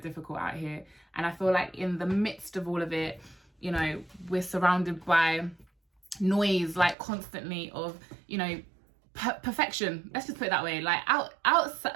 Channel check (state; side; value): drops out; left; at 7.0 s